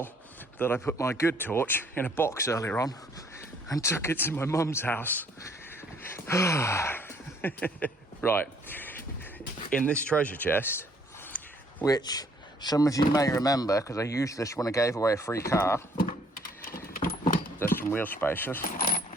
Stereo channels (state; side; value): normal; both; correlation 0.63